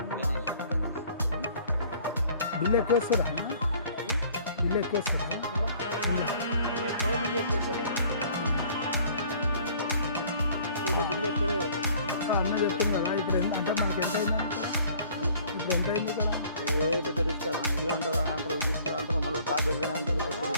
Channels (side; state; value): both; inverted; correlation -0.54